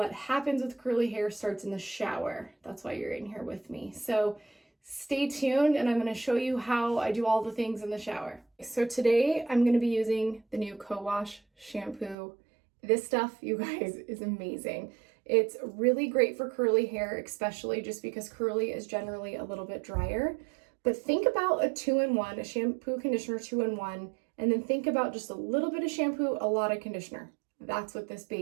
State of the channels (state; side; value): drops out; left; at 12.2 s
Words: happens with curly hair starts in the shower. That's why you're in here with me. So stay tuned and I'm going to show you how I do all the things in the shower. So today I'm going to be using the new Co-Wash shampoo. This stuff, you guys, is amazing. It's really great for curly hair, especially just because curly is generally a little bit drier. But think about a 2-in-1, a shampoo conditioner 2-in-1, and then think about just a little bit of shampoo, a lot of conditioner. That's what this